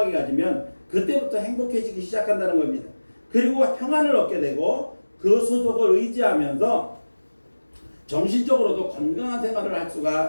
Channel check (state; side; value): inverted; both; correlation -1.00